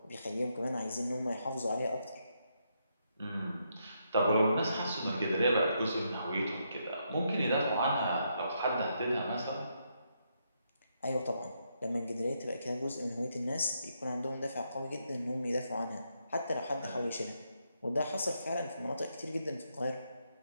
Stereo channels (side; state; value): both; inverted; correlation -0.79